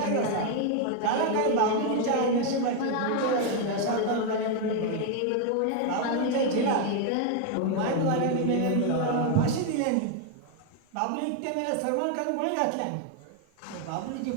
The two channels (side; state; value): both; different; correlation 0.01